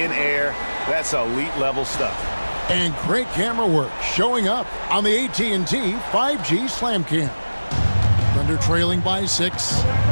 air, that's elite level stuff. And great camera work showing up on the AT&T 5G Slam Cam. Thunder trailing by 6.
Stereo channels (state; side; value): inverted; both; correlation -1.00